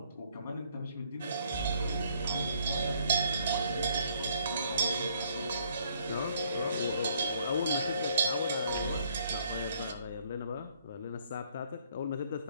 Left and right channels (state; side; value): inverted; both; correlation -0.65